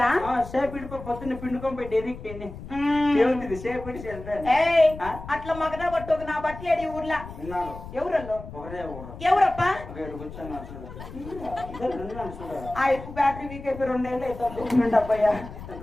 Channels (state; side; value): noise; left; rumble, 13 dB below the sound